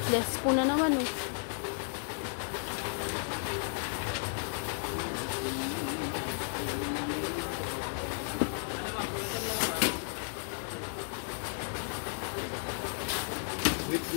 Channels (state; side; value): silent; right; 55 dB below the other